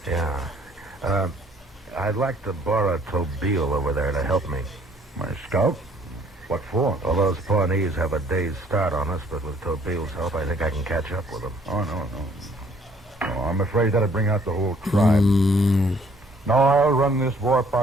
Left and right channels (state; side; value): normal; both; correlation 0.61